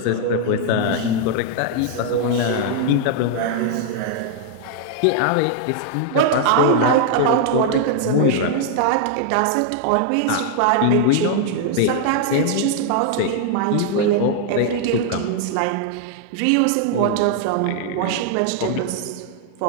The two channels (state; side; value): different; both; correlation 0.00